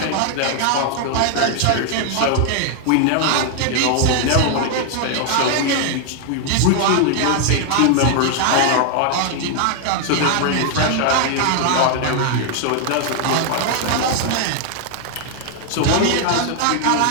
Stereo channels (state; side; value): different; both; correlation 0.00